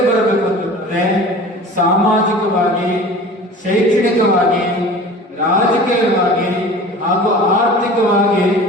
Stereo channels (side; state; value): both; normal; correlation 0.40